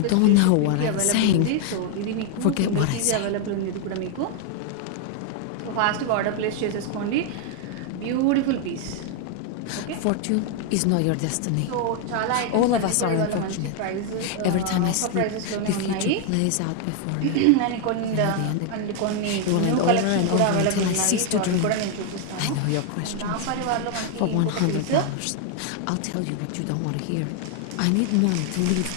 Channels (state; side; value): different; both; correlation 0.01